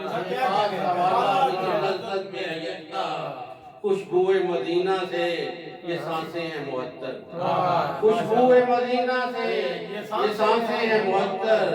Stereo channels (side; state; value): both; identical; correlation 1.00